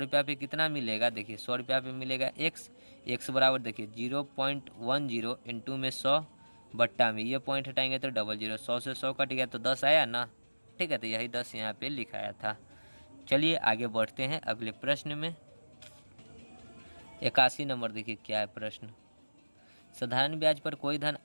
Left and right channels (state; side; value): inverted; both; correlation -1.00